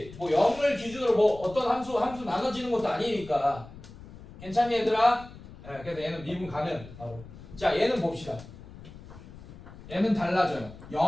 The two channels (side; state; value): left; noise; rumble, 17 dB below the sound